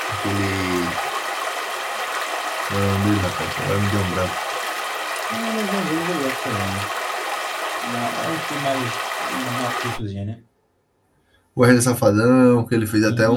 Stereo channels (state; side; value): identical; both; correlation 1.00